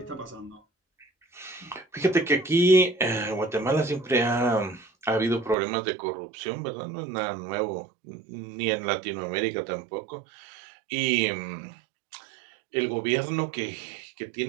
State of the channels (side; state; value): left; drops out; at 5.6 s